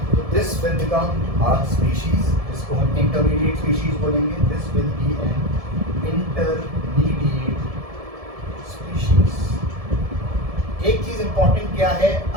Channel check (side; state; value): left; late; 1.7 ms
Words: तो this will become a species, जिसको हम इंटरमीडिएट स्पीशीज बोलेंगे। This will be an intermediate species. एक चीज इंपॉर्टेंट क्या है,